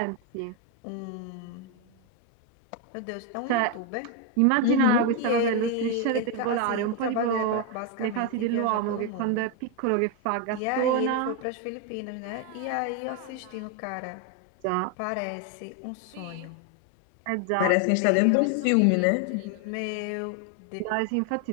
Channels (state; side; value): different; both; correlation 0.01